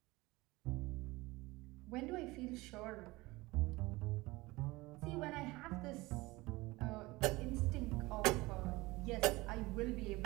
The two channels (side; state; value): left; quieter; 21.4 dB